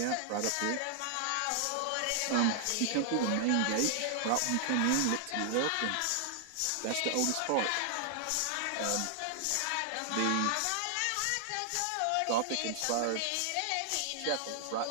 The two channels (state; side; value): different; both; correlation 0.00